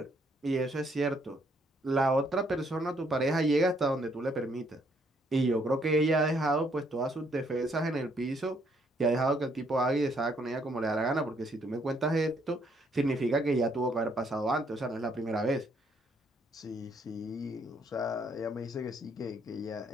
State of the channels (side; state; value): both; normal; correlation 0.69